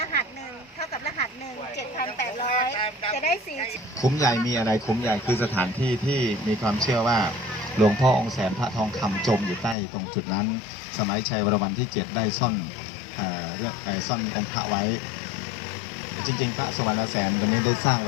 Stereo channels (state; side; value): drops out; right; at 9.8 s